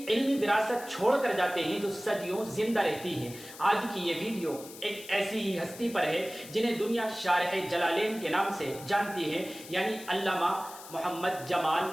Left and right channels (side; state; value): left; noise; hiss, 16 dB below the sound